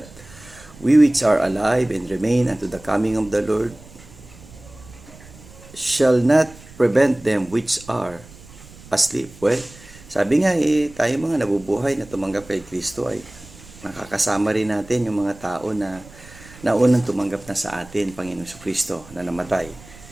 we which are alive and remain unto the coming of the Lord shall not prevent them which are asleep. Well, sabi nga tayo mga nabubuhay na tumanggap kay Kristo ay nakakasama rin natin yung mga tao na naunang tumanggap na sa atin, Panginoong Kristo, na namatay.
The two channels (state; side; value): noise; right; rumble, 21 dB below the sound